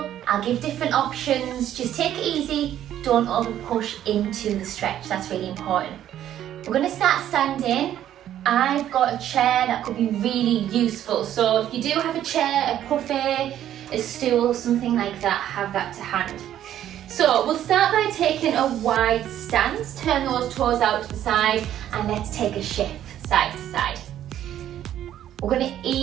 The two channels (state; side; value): quieter; left; 11.4 dB